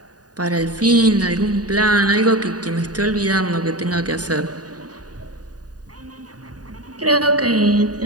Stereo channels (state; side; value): late; left; 0.68 ms